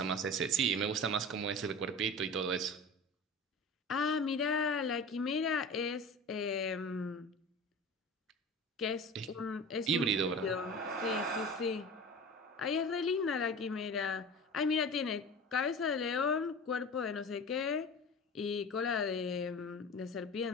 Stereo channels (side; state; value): both; normal; correlation 0.34